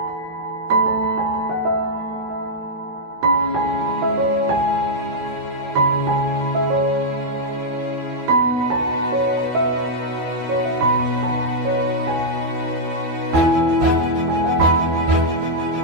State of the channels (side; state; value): left; late; 13 ms